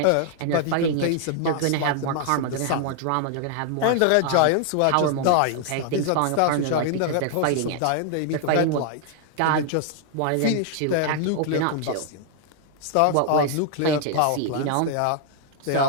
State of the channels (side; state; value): both; different; correlation 0.00